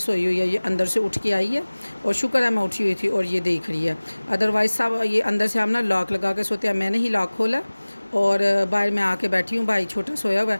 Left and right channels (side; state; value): both; inverted; correlation -1.00